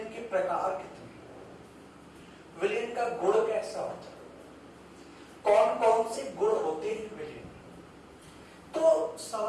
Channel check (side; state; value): both; identical; correlation 1.00